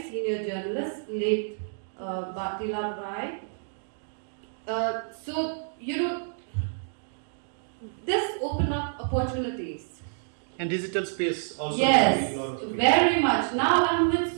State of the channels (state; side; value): silent; left; digital silence